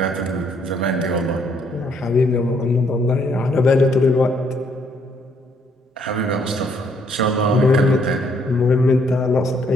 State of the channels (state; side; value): normal; both; correlation 0.68